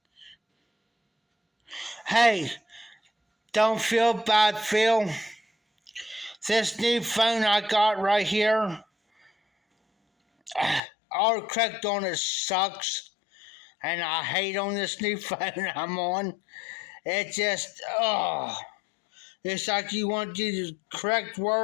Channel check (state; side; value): drops out; right; at 10.8 s